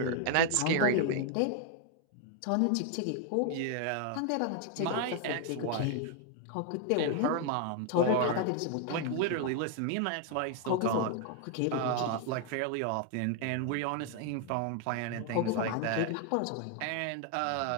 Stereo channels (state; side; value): different; both; correlation 0.00